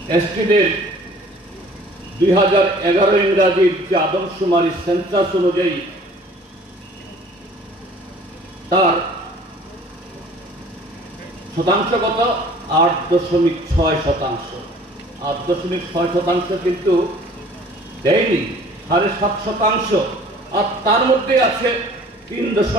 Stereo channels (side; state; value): both; normal; correlation 0.51